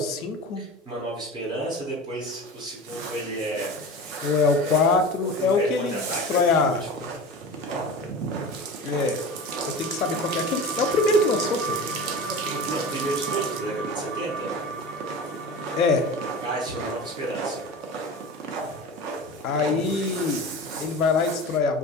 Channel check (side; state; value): both; normal; correlation 0.32